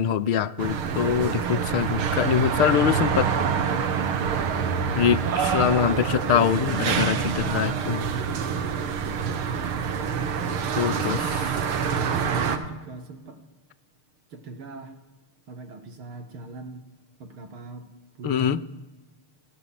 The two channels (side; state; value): left; late; 6.6 ms